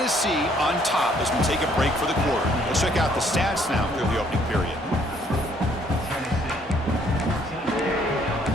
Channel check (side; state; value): both; normal; correlation 0.65